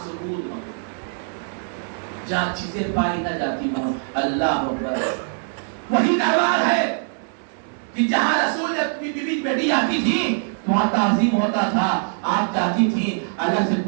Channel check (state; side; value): silent; left; digital silence